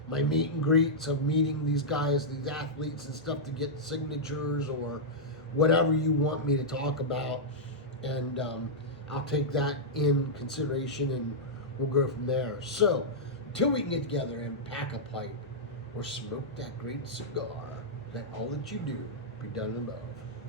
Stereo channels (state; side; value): normal; both; correlation -0.08